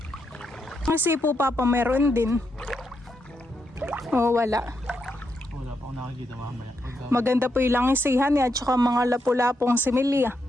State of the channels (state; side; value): normal; both; correlation 0.82